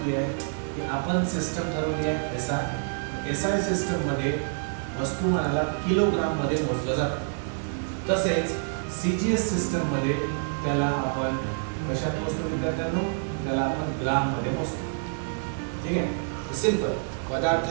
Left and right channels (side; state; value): left; silent; 60 dB below the other